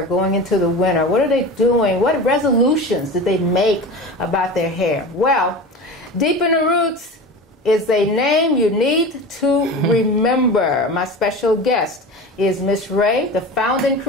going into the winter? What are they doing? What resolutions did they make about their hair? Well, Deep in the Roots is a name you need to remember. My special guest is Ms Ray, the founding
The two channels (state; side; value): normal; both; correlation 0.31